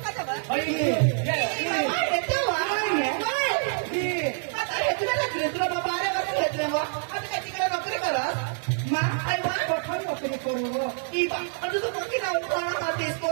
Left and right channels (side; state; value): left; silent; 58 dB below the other